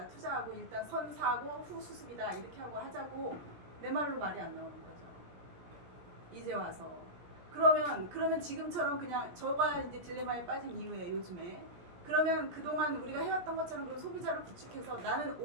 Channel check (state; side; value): late; left; 17 ms